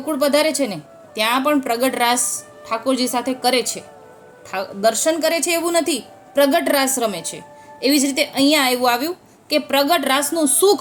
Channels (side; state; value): both; identical; correlation 1.00